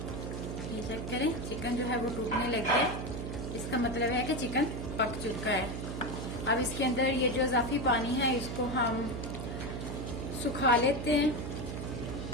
ये चेक करें, चिकन जो है वो टूटने लग गया। इसका मतलब है कि चिकन पक चुका है। अब इसके अंदर ये जो इजाफी पानी है इसको हम सुखा लेते हैं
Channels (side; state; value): right; noise; hum, 5 dB below the sound